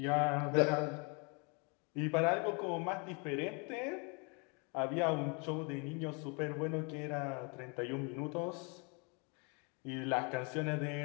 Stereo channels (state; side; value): quieter; right; 33.6 dB